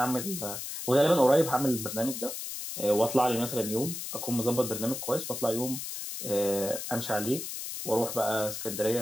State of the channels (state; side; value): noise; left; hiss, 6 dB below the sound